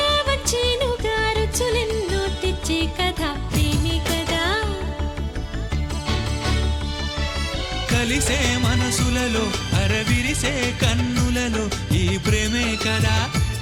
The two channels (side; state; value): both; identical; correlation 1.00